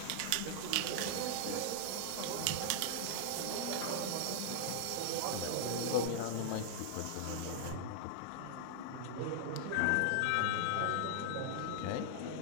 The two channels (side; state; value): both; different; correlation -0.01